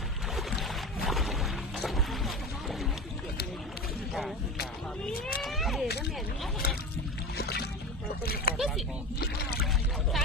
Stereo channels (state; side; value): normal; both; correlation 0.28